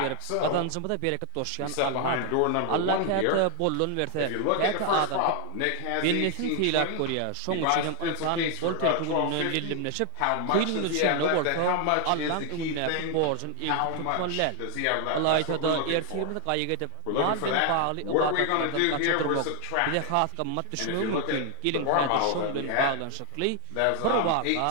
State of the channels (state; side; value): different; both; correlation 0.00